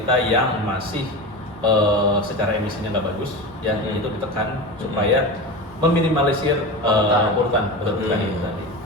yang masih secara emisinya nggak bagus, ya itu ditekan supaya meminimalisir polutan betul itu tadi.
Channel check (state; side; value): normal; both; correlation 0.26